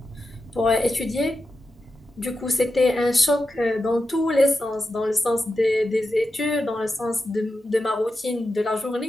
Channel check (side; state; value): both; normal; correlation 0.89